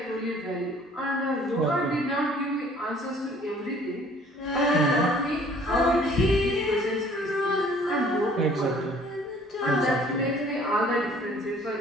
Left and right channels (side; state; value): both; normal; correlation 0.55